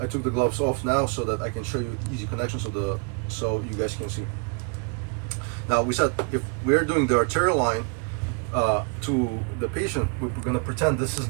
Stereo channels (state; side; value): quieter; left; 34.0 dB